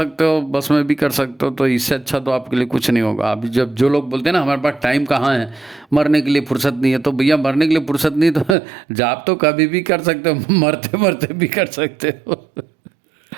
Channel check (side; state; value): left; drops out; at 8.6 s